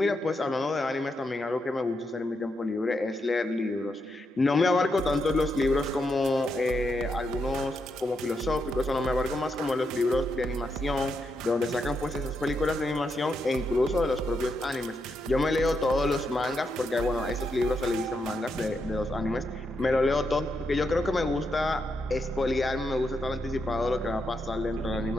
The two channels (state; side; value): normal; both; correlation 0.82